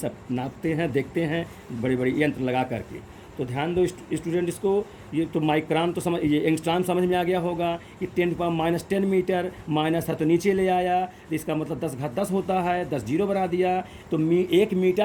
नापते हैं, देखते हैं, बड़े बड़े यंत्र लगा करके। तो ध्यान दो स्टूडेंट, इसको ये तो माइक्रोन तो समझ, ये एंगस्ट्रॉम समझ में आ गया होगा कि 10⁻⁻10 मीटर, माइनस था तो नीचे ले आया, तो इसका मतलब 10⁻10 होता है, 10 जीरो बना दिया, तो 1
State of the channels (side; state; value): both; identical; correlation 1.00